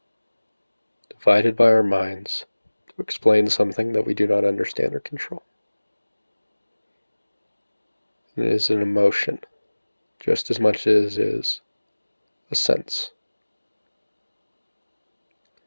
divided by our minds to explain something that we do not understand or control. It is an emotion, just as much as it is a sense.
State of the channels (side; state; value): both; inverted; correlation -1.00